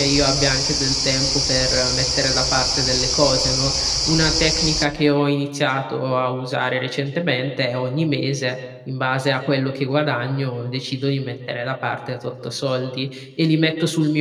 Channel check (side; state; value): both; identical; correlation 1.00